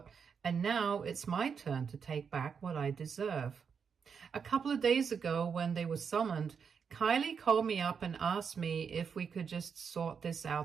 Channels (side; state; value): left; quieter; 6.4 dB